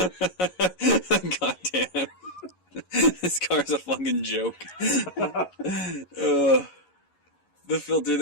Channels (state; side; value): late; right; 11 ms